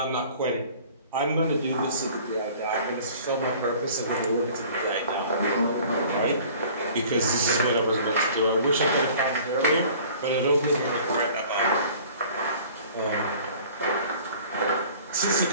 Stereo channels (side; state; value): both; inverted; correlation -0.49